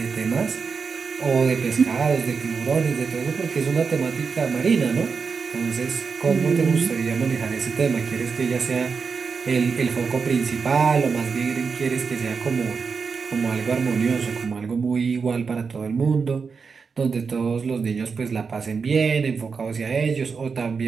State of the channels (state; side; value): quieter; left; 5.3 dB